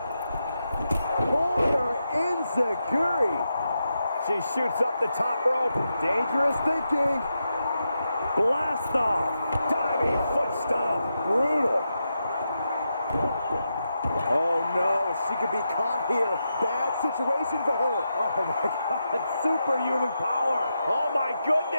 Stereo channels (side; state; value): both; inverted; correlation -0.86